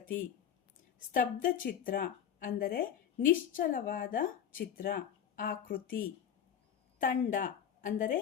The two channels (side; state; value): right; quieter; 9.0 dB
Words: ಸ್ತಬ್ಧ ಚಿತ್ರ ಅಂದರೆ ನಿಶ್ಚಲವಾದ ಚಿತ್ರ, ಆಕೃತಿ. ತಂಡ ಅಂದರೆ